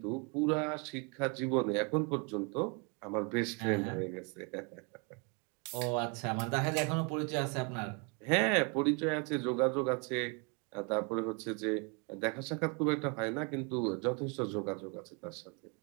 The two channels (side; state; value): left; quieter; 33.8 dB